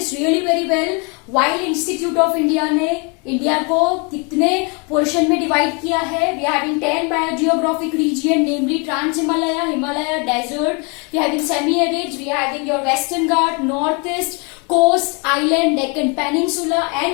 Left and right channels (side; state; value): right; quieter; 32.9 dB